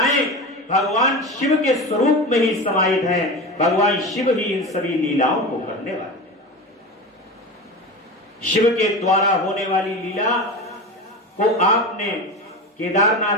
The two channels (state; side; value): normal; both; correlation 0.26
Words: भगवान शिव के स्वरूप में ही समाहित हैं। भगवान शिव ही इन सभी लीलाओं को करने वाले। शिव के द्वारा होने वाली लीला को आपने